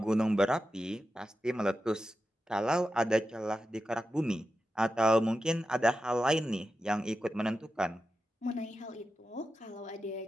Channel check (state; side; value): normal; both; correlation 0.91